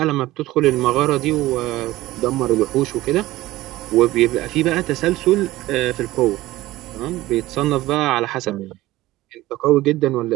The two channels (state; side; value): quieter; left; 17.2 dB